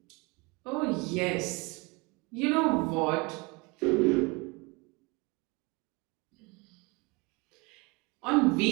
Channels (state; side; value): quieter; left; 27.2 dB